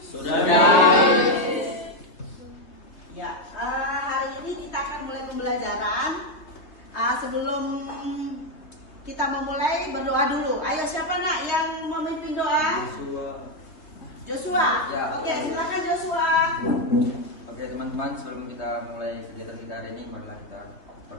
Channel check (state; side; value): late; right; 3.2 ms